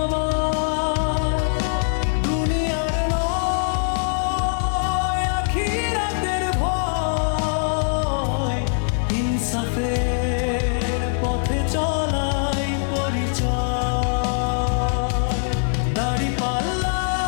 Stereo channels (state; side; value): silent; right; digital silence